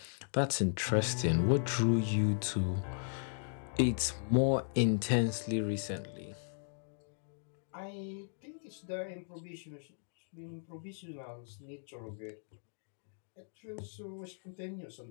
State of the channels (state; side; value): silent; right; digital silence